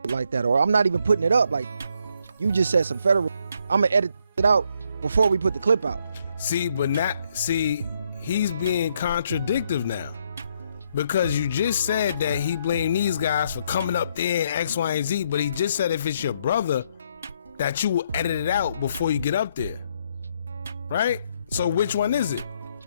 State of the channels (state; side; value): inverted; both; correlation -0.73